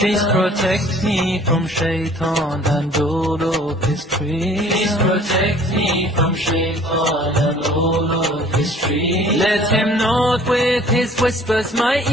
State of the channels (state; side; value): normal; both; correlation 0.53